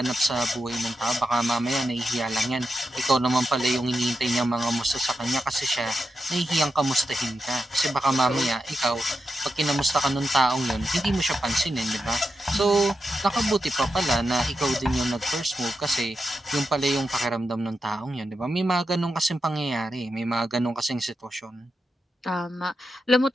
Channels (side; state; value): both; normal; correlation 0.88